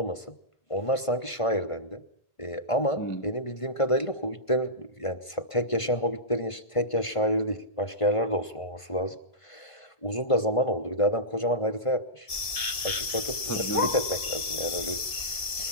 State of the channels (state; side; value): late; right; 1.7 ms